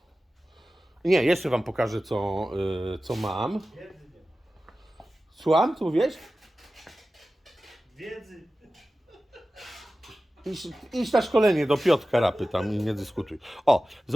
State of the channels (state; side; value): normal; both; correlation 0.95